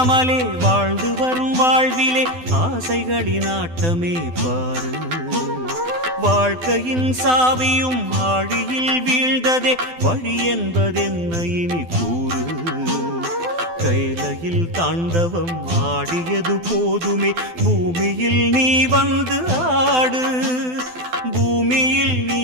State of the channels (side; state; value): left; late; 12 ms